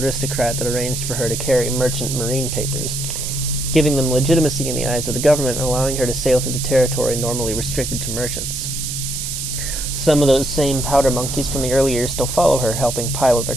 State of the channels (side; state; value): right; noise; hiss, 4 dB below the sound